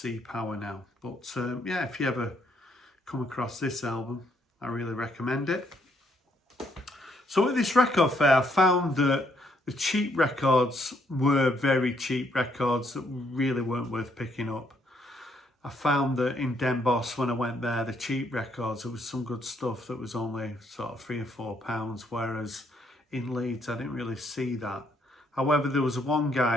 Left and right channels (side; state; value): both; normal; correlation 0.72